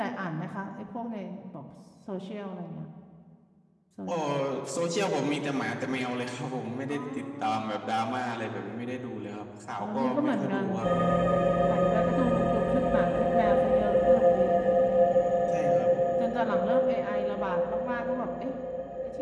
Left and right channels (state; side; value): identical; both; correlation 1.00